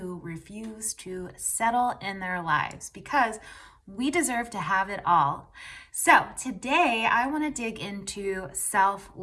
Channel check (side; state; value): both; identical; correlation 1.00